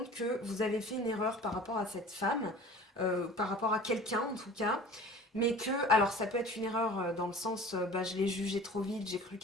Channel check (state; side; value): normal; both; correlation 0.43